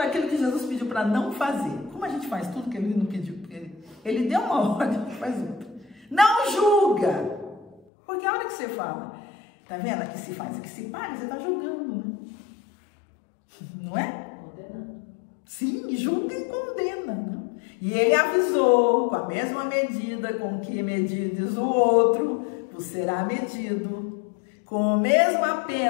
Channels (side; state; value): right; drops out; at 7.8 s